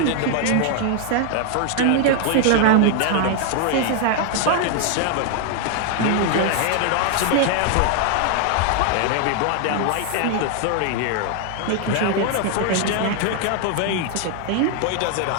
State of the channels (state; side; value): different; both; correlation 0.00